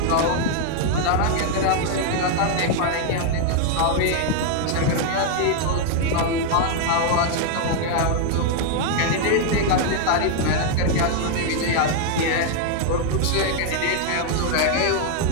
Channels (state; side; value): different; both; correlation 0.00